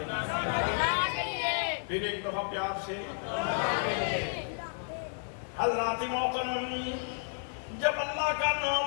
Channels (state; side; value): silent; right; 57 dB below the other